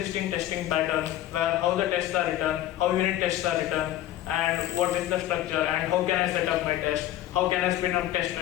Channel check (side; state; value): right; quieter; 13.3 dB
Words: testing pattern, where how the tests are written, how unit tests are written, and what is the structure, and how can I set up my test, how can I spin up test